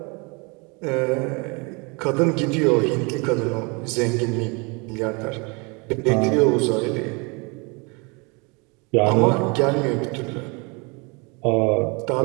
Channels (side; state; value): left; quieter; 30.0 dB